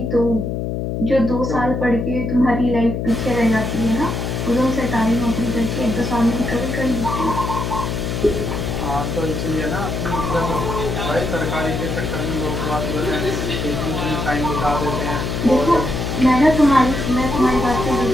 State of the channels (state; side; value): noise; left; hum, 2 dB below the sound